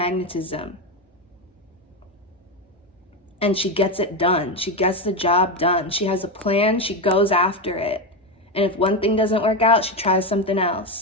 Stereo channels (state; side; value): normal; both; correlation 0.13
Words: And she gets it done. She gets the job done. She has a plan. She goes after it. And if one thing doesn't work out, she tries something